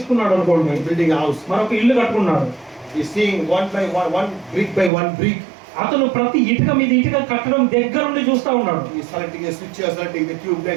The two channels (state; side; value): drops out; left; at 4.9 s